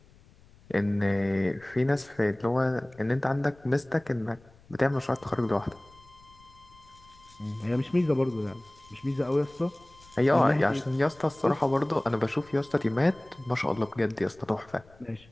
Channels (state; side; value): noise; left; rumble, 26 dB below the sound